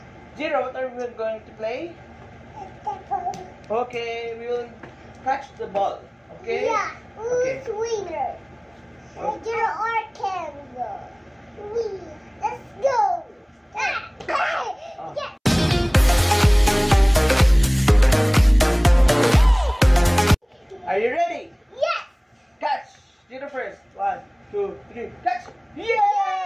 Zero, what are we going to play? Basketball. Okay, we will catch the ball. Okay? Yeah. Who's Okay. winner? Oh. Jiro or Kenzo? Let's go. Oh. Yeah. Are you ready? Yes. Catch! Zero first. 1, 2, 3. Catch!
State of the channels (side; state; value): both; identical; correlation 1.00